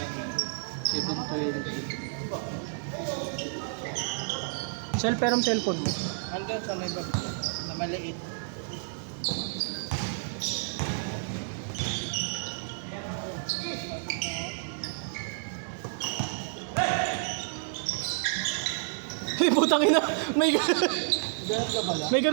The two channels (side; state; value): left; silent; digital silence